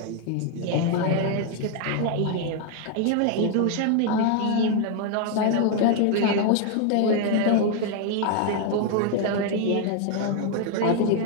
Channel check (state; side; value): different; both; correlation 0.00